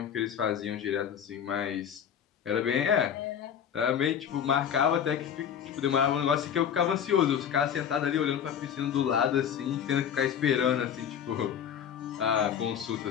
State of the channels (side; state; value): right; quieter; 8.6 dB